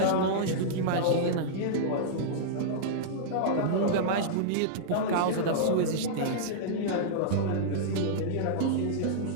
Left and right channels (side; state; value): both; different; correlation -0.02